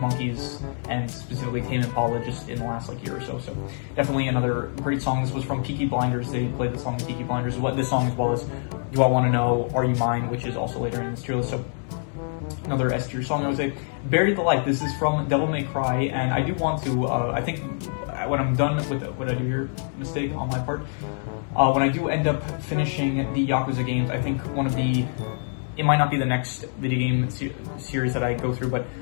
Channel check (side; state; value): right; silent; 61 dB below the other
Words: Monkeys, and specifically Tame Impala, just in the last year or so. So definitely another great song. This was from Peaky Blinders. They played the song in Peaky Blinders. This song, as well as Do I Want to Know, Are You Mine, which is also later in this tier list. So another S tier song, I would say. Bury the Light. This is from Devil May Cry, and I do want to, I think when I'm done with what I do here, mistake on my part, when I do end up finishing the Yakuza games, I think it might not be the next video game series that I go through, but